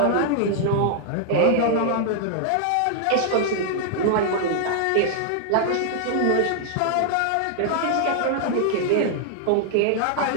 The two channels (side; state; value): both; different; correlation 0.00